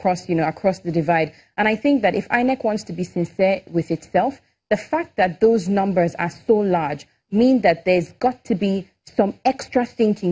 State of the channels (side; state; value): both; identical; correlation 1.00